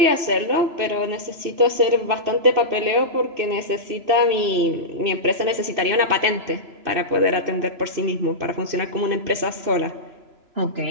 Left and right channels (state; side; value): late; left; 3.0 ms